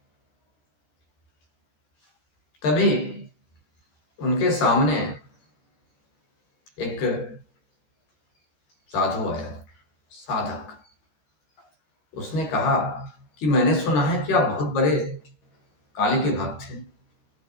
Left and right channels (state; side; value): late; right; 14 ms